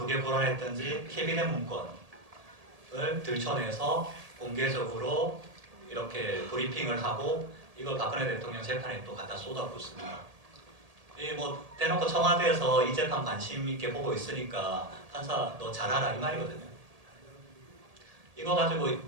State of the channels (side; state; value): left; late; 1.8 ms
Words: 불안했던지 캐비넷 문건을 들춰내서 공개적으로 이렇게 브리핑을 하고 이걸 박근혜 대통령 재판에 또 갖다 쏟아붓습니다. 이 뭐 대놓고 청와대에서 이 재판 관심 있게 보고 있으니까 판사 너 잘하라 이 말이거든요. 이거 가지고